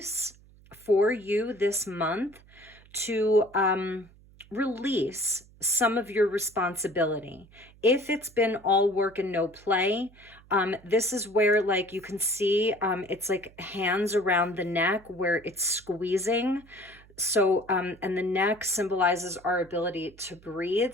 for you this month to release some of your responsibility. If it's been all work and no play, this is where, like, you can see it's like hands around the neck where it's squeezing. So, and the neck symbolizes our ability to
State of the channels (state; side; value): noise; right; hum, 26 dB below the sound